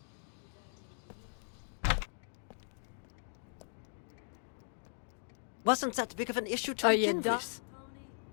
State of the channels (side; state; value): right; silent; digital silence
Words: Wasn't that big of an issue to Are you begin done? with?